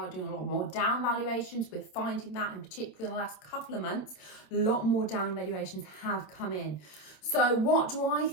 doing a lot more down valuations. We're finding that in particular in the last couple of months, a lot more down valuations have come in. So what do I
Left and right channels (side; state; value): right; late; 27 ms